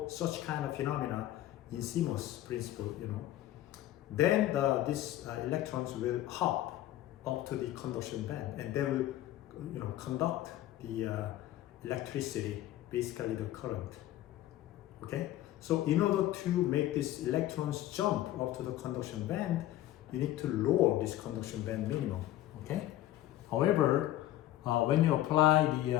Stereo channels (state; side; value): quieter; right; 14.1 dB